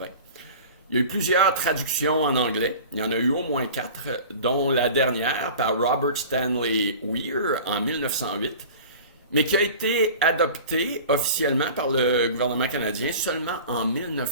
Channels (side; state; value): both; inverted; correlation -0.39